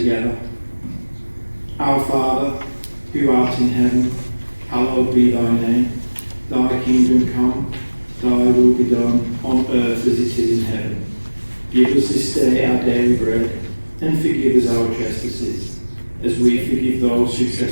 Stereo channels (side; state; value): both; inverted; correlation -1.00